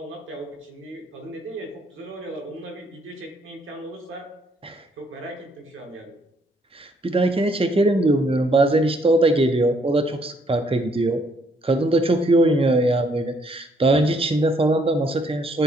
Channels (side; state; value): both; normal; correlation 0.68